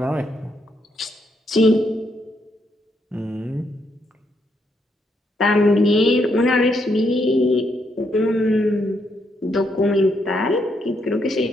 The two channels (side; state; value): both; normal; correlation 0.77